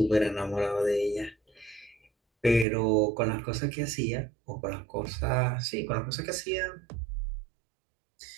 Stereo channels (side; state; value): left; drops out; at 2.7 s